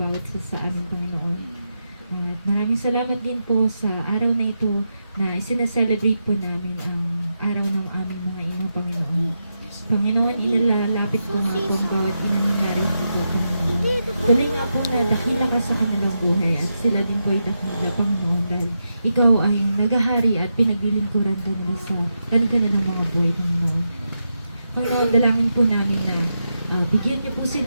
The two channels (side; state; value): both; inverted; correlation -0.86